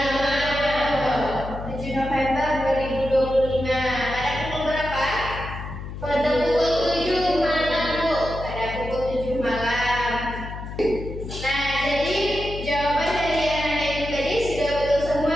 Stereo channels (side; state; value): left; noise; hum, 9 dB below the sound